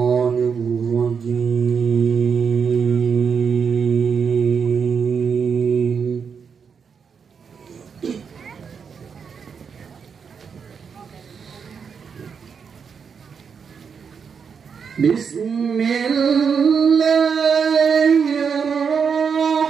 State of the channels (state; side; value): quieter; left; 6.3 dB